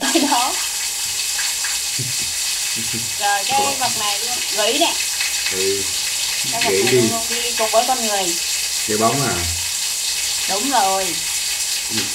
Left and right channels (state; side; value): identical; both; correlation 1.00